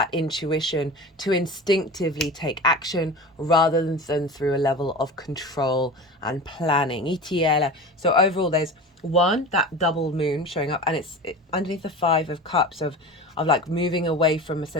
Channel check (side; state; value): both; normal; correlation 0.33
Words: intuition to instinctively take action rather than through a level of control and planning. So overall, there's that double moon showing up, and it's underneath the 5 of Cups of like moving away from a